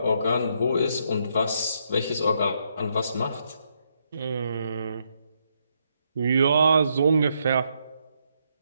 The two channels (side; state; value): both; inverted; correlation -0.76